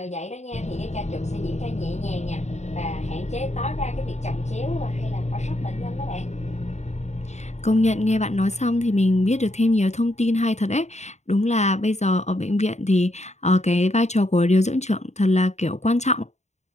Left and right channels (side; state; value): right; late; 0.33 ms